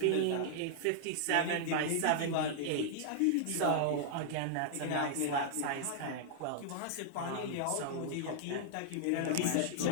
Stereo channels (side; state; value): both; different; correlation -0.01